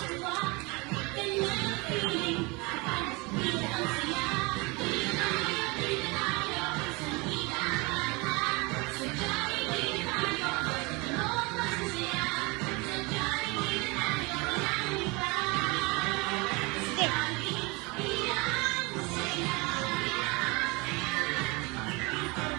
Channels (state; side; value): quieter; left; 26.8 dB